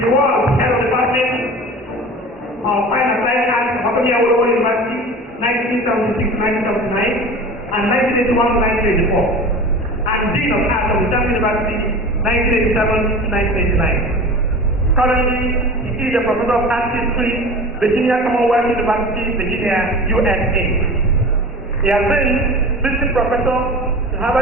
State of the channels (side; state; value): both; normal; correlation 0.36